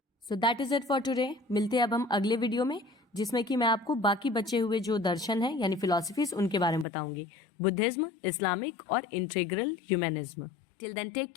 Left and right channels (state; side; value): drops out; right; at 6.9 s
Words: So that is it for today. मिलते हैं अब हम अगले वीडियो में, जिसमें कि मैं आपको बाकी बचे हुए जो दर्शन है यानी फिलॉसफीज उनके बारे में बताऊंगी, बुद्धिज्म, इस्लामिक और integral humanism. Till then take